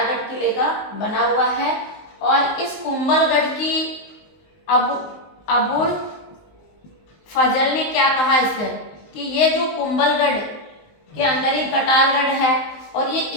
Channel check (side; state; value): right; late; 19 ms